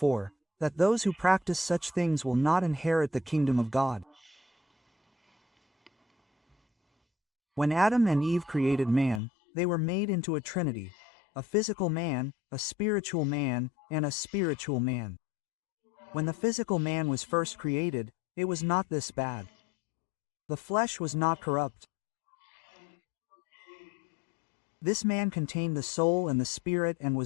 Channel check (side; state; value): right; drops out; at 9.2 s